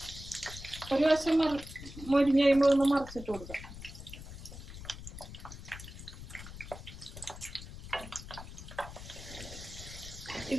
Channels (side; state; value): left; noise; rumble, 12 dB below the sound